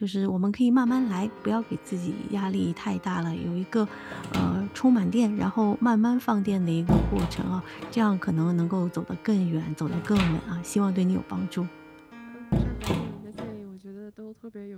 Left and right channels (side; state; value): both; identical; correlation 1.00